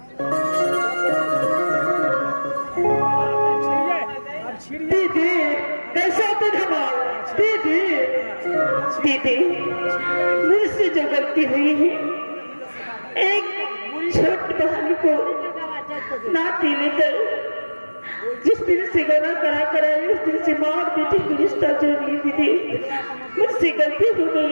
दीदी कैसा धमाल दीदी दीदी मुझसे जो गलती हुई है, एक छोटी बहन को नाती लेकर जिस दिन से गला करा कराए उस दिन से माँ और बेटी को रिश्ता जोड़ ली। दीदी मुझसे गलती हो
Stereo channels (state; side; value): inverted; both; correlation -1.00